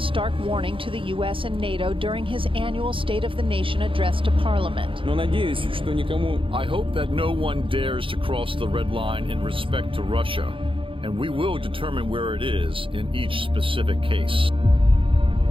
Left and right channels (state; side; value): late; left; 0.25 ms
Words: warning to the U.S. and NATO during his annual State of the Nation address to Parliament. I hope that no one dares to cross the red line in respect to Russia, and we will determine where it is in each specific case.